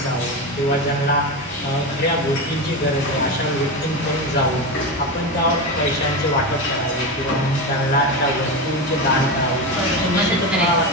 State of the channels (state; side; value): normal; both; correlation 0.18